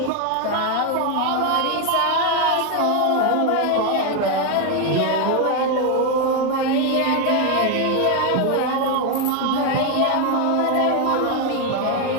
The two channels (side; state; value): both; different; correlation 0.01